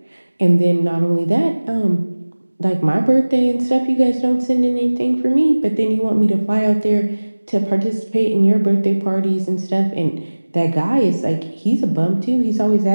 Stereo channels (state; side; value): inverted; both; correlation -1.00